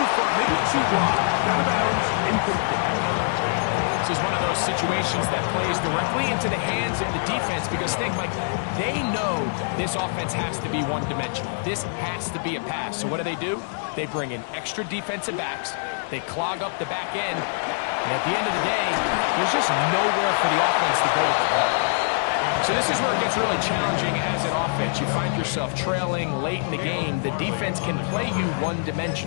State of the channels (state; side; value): silent; right; digital silence